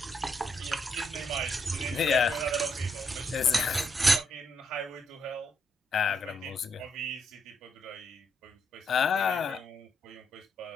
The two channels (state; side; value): normal; both; correlation 0.78